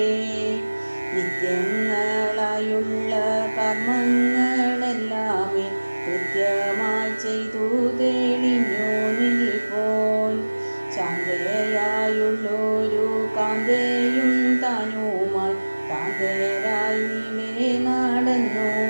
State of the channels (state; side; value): inverted; both; correlation -1.00